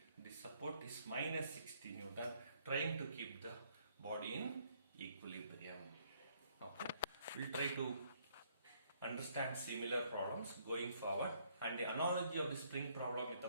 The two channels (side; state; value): both; inverted; correlation -0.67